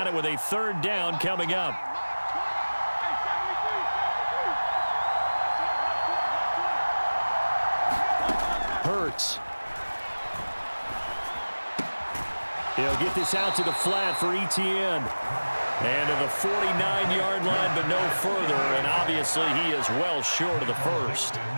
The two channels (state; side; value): inverted; both; correlation -1.00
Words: it with a 3rd down coming up. Hurts. He'll get this out to the flat for Etienne. And to the 49-yard line, but no further. And obviously he is well short of the first.